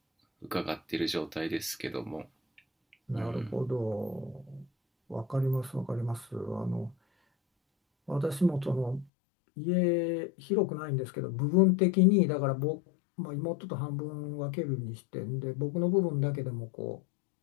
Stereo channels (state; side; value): drops out; right; at 9.1 s